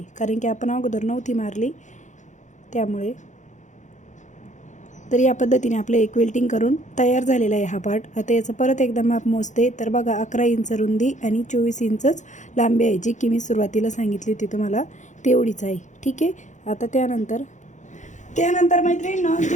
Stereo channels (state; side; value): late; right; 0.35 ms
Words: कारण की आपण अगोदर नव्हती मारली त्यामुळे। तर या पद्धतीने आपलं एक क्विल्टिंग करून तयार झालेला आहे हा पार्ट। आता याचं परत एकदा माप मोजते। तर बघा 11 इंच रुंदी आणि 24 इंचच लांबी आहे, जी की मी सुरुवातीला सांगितली होती तुम्हाला तेवढीच आहे। ठीक आहे, आता त्यानंतर मैत्रिणींनो,